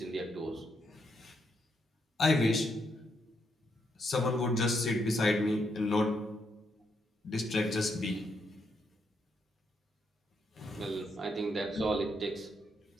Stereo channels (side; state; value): both; normal; correlation 0.78